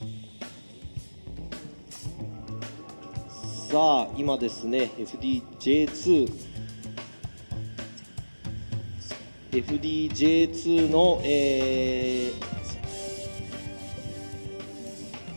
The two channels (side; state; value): both; inverted; correlation -1.00